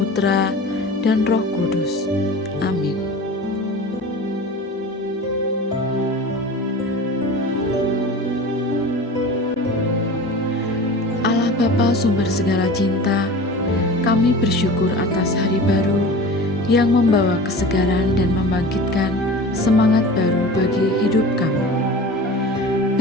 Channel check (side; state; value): both; normal; correlation 0.36